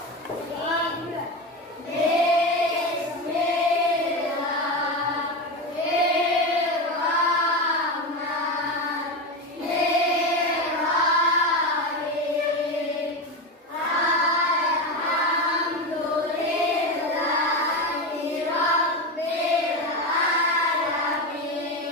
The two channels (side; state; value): both; normal; correlation 0.18